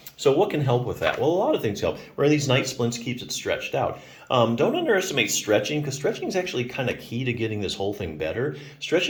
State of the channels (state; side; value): identical; both; correlation 1.00